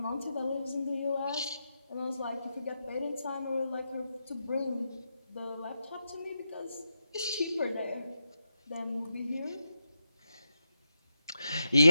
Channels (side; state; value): both; inverted; correlation -0.87